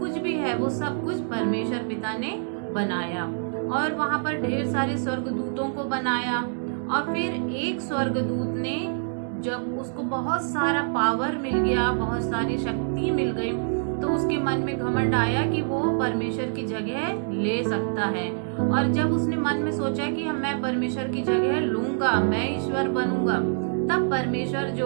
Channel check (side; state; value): left; silent; digital silence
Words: भी है वो सब कुछ परमेश्वर पिता ने बनाया। और वहाँ पर ढेर सारे स्वर्गदूतों को बनाया। और फिर एक स्वर्गदूत ने, जब उसको बहुत सारा पावर मिल गया, बहुत सारी शक्ति मिल गई, तो उसके मन में घमंड आया कि वो परमेश्वर की जगह ले सकता है। और जब उसने मन में सोचा कि मैं परमेश्वर की जगह लूंगा, मैं ईश्वर बनूंगा, तब परमेश्वर जो